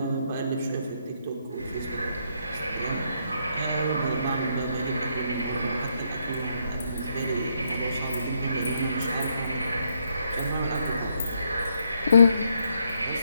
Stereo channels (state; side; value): inverted; both; correlation -0.75